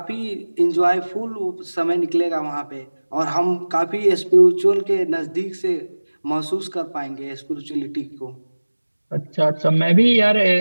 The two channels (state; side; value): inverted; both; correlation -1.00